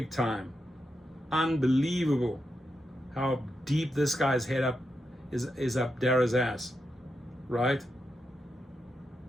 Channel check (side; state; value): both; normal; correlation 0.86